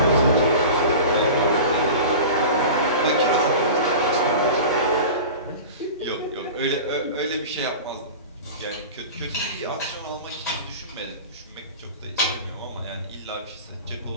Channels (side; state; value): both; inverted; correlation -0.33